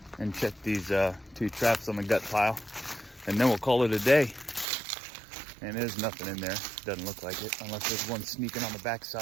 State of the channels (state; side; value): drops out; left; at 4.7 s